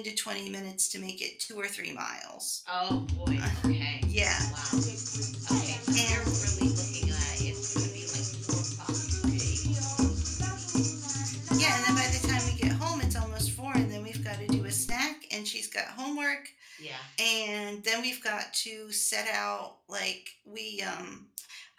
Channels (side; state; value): both; identical; correlation 1.00